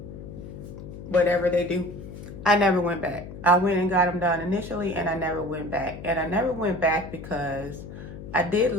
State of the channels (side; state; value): left; noise; hum, 12 dB below the sound